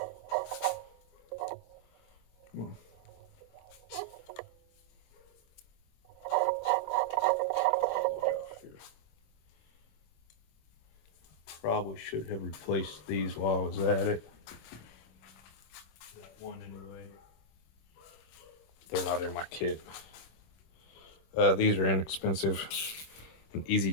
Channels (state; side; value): late; right; 26 ms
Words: Come on. Probably should have replaced these while I was at it. That one anyway. They're not in my kit. These are inexpensive and easy